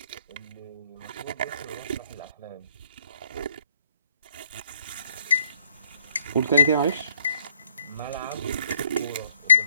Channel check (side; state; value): both; inverted; correlation -0.68